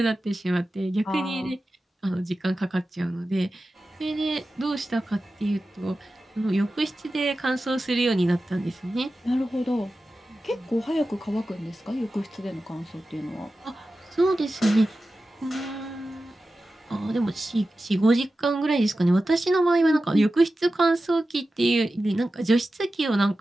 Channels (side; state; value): both; normal; correlation 0.94